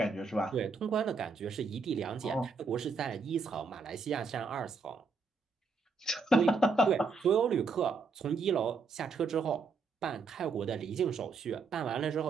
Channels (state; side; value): quieter; left; 4.5 dB